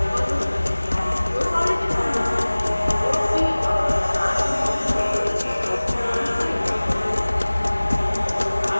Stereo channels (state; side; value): inverted; both; correlation -1.00